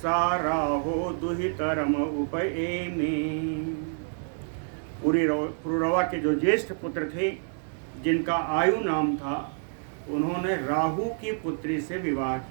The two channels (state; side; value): silent; left; digital silence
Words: दुहितरम उपएमे। पुरुरवा के जो ज्येष्ठ पुत्र थे जिनका आयु नाम था, उन्होंने राहु की पुत्री से विवाह